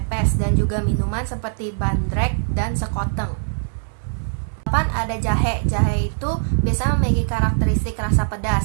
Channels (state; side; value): silent; left; digital silence